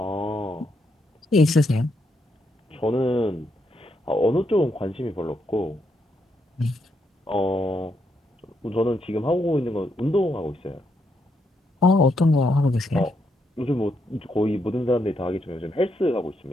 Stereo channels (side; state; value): both; normal; correlation 0.79